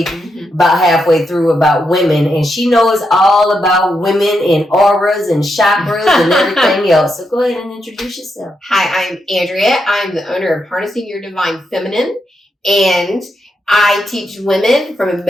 about halfway through about women, and she knows all about women and auras and chakras and everything else. So go ahead and introduce yourself. Hi, I'm Andrea. I'm the owner of Harnessing Your Divine Feminine, and I teach women from a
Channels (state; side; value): normal; both; correlation 0.83